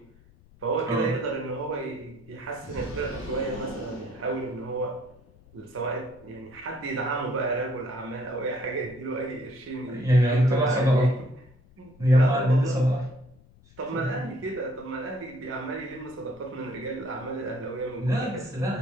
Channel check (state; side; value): noise; left; rumble, 26 dB below the sound